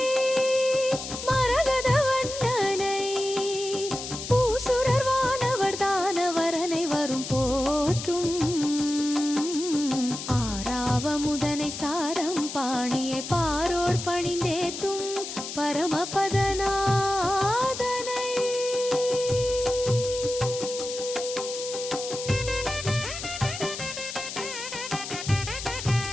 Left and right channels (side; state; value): left; noise; hiss, 8 dB below the sound